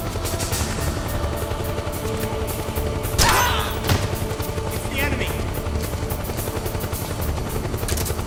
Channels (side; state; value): both; identical; correlation 1.00